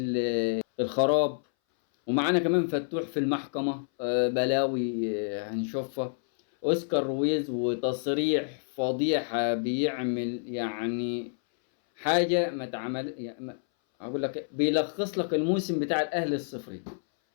الخراب. ومعانا كمان فتوح في المحكمة، بلاوي هنشوفها. اوسكار رويز وتصريح فضيحة بيعمل يعني حاجه ما تعمل يعني اقول لك بيلخص لك الموسم بتاع الاهلي الصفري،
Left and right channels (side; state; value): right; silent; 59 dB below the other